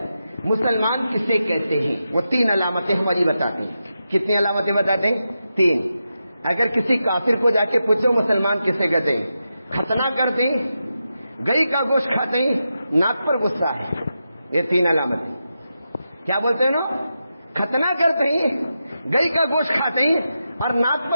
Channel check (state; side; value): inverted; both; correlation -0.88